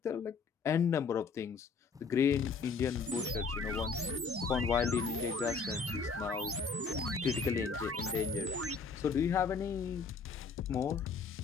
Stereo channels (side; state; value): right; quieter; 5.0 dB